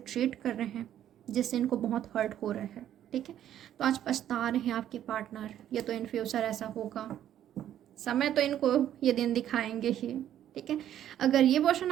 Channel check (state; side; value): quieter; left; 11.1 dB